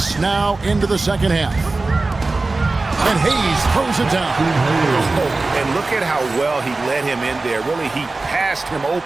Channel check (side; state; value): left; quieter; 3.4 dB